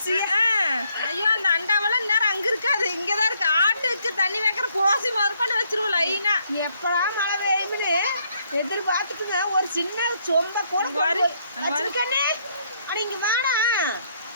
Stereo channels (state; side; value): inverted; both; correlation -0.71